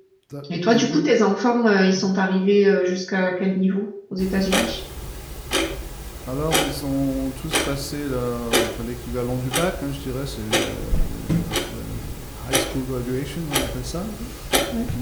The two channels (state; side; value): identical; both; correlation 1.00